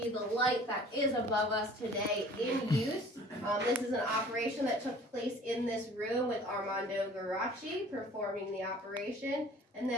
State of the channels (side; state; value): both; normal; correlation 0.49